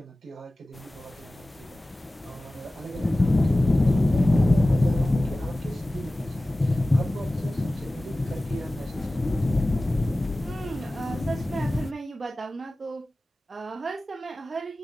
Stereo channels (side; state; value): both; normal; correlation 0.97